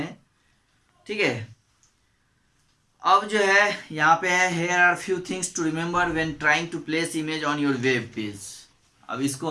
ठीक है। अब जो है यहाँ पे है, here are few things to remember when trying to place image on your web page। अब इसको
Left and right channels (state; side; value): identical; both; correlation 1.00